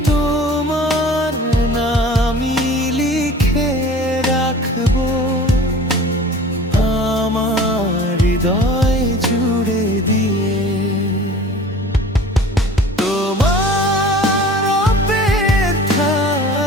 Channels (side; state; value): both; normal; correlation 0.43